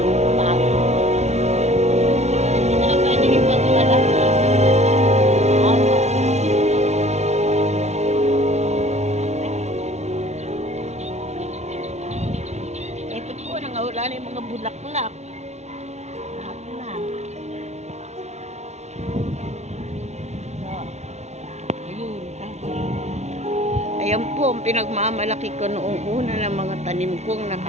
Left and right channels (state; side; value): late; left; 0.32 ms